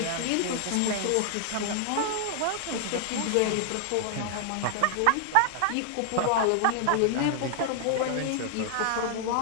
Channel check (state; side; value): different; both; correlation 0.00